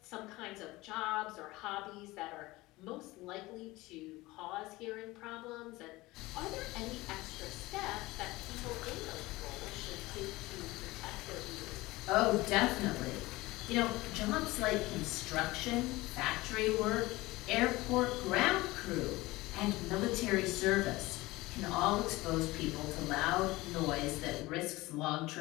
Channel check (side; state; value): right; quieter; 20.1 dB